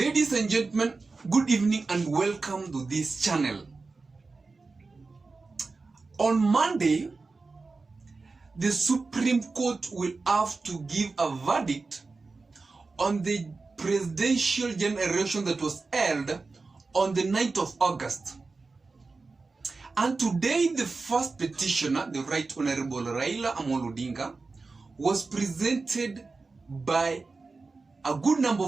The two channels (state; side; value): quieter; left; 4.0 dB